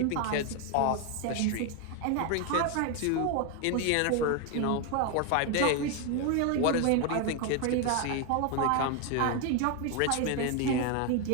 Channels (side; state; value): both; different; correlation 0.01